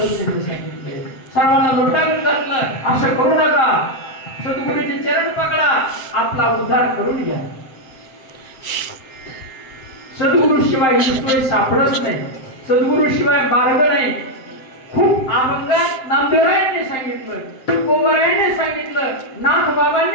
त्यांनी सांगितले, सर्वांना लुटावून घातलं, असं करू नका, सद्गुरूचे चरण पकडा, आपला उद्धार करून घ्या. सद्गुरु शिवाय ईश्वर सापडत नाही, सद्गुरु शिवाय मार्ग नाही. खूप अभंगात नामदेवरायांनी सांगितलं, तुकोबरायांनी सांगितलं, नाथ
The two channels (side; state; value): right; late; 7.6 ms